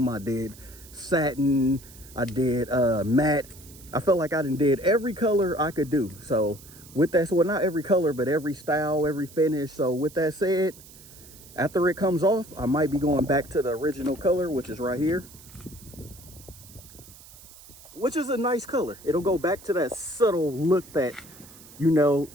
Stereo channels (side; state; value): right; noise; hiss, 20 dB below the sound